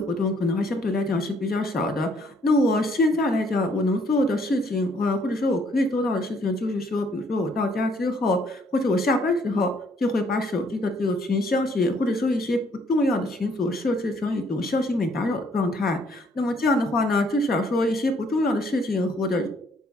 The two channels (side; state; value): both; normal; correlation 0.65